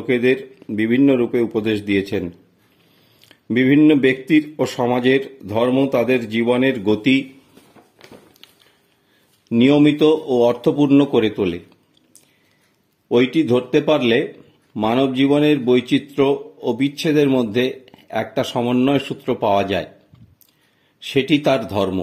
বিভিন্ন রূপে উপদেশ দিয়েছেন। বিভিন্ন ব্যক্তির ও সমাজের ধর্ম তাদের জীবনের গতি নিয়মিত ও অর্থপূর্ণ করে তোলে। ওইটি ধরতে পারলে মানব জীবনের বৈচিত্র্য ও বিচ্ছেদের মধ্যে একটা সমন্বয় সূত্র পাওয়া যায়, সেটি তার ধর্ম।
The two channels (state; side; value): identical; both; correlation 1.00